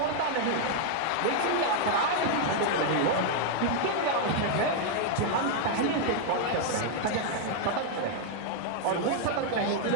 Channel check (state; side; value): different; both; correlation 0.00